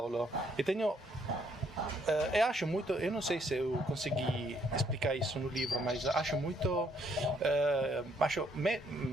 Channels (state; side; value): normal; both; correlation 0.69